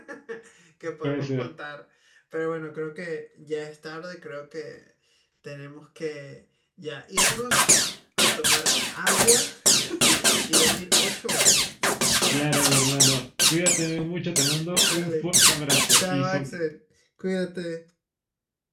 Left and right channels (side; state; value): both; identical; correlation 1.00